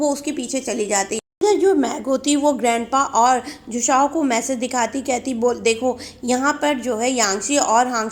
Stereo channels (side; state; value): both; identical; correlation 1.00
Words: उसके पीछे चली जाती। इधर जो मैग होती वो ग्रैंडपा और जुशाओ को मैसेज दिखाती, कहती बोल देखो यहाँ पर जो है यांगची और